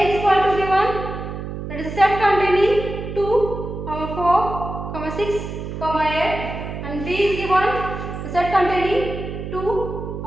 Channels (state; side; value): noise; right; hum, 7 dB below the sound